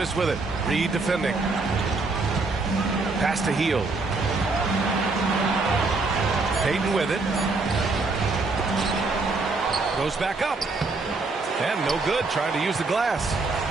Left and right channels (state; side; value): quieter; left; 3.7 dB